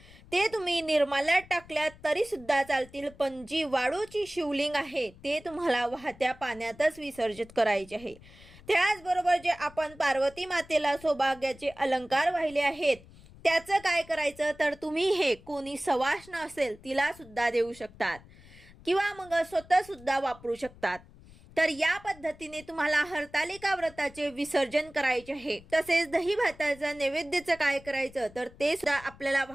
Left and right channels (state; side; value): noise; left; rumble, 22 dB below the sound